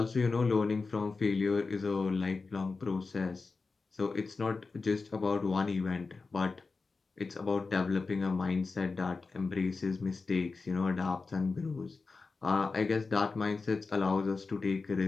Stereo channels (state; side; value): quieter; right; 4.2 dB